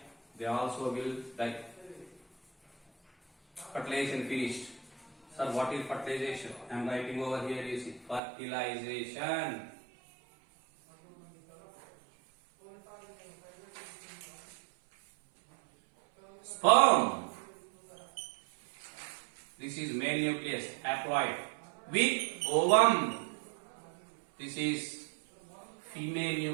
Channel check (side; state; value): left; drops out; at 8.2 s